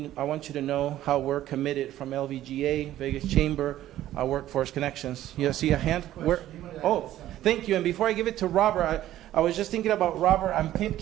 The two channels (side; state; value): left; quieter; 13.4 dB